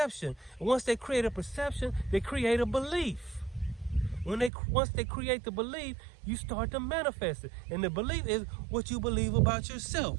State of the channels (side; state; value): left; drops out; at 4.5 s